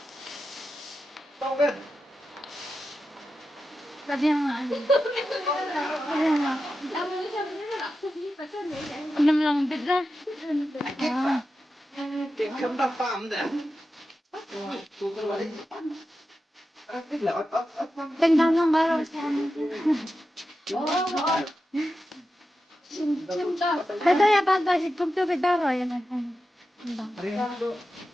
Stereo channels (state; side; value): normal; both; correlation 0.91